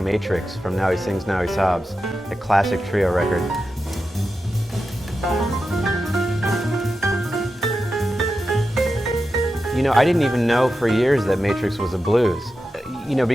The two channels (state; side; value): normal; both; correlation 0.90